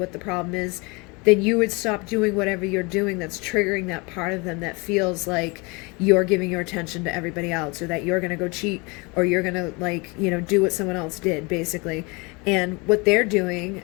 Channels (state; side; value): quieter; right; 28.0 dB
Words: the problem is, then you would stop doing whatever you're doing that's triggering that part of them that feels like you're giving your attention to everybody else, or that you're going to go cheat, or you're going to do what someone else did, basically. And what they're doing